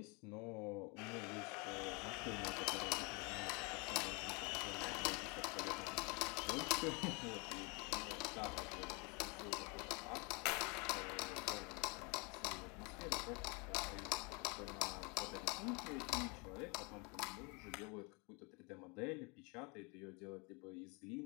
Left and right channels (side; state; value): right; quieter; 30.6 dB